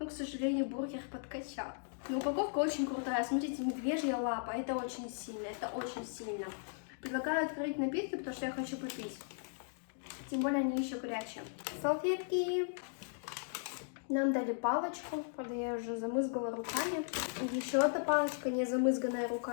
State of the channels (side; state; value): right; silent; digital silence